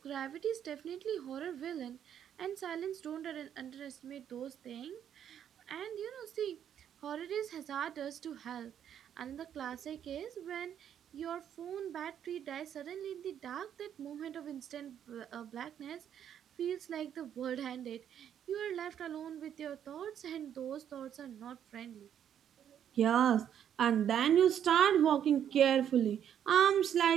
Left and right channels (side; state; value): left; quieter; 9.4 dB